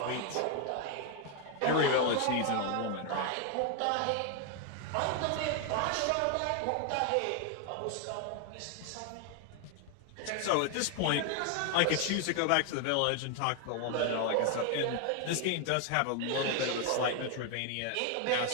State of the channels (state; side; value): different; both; correlation 0.01